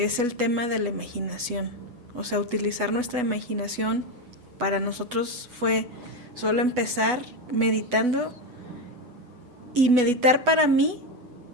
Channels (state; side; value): late; left; 8.1 ms